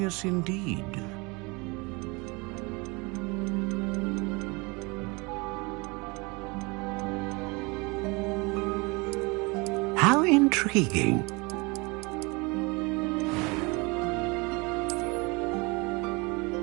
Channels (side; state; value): left; quieter; 27.3 dB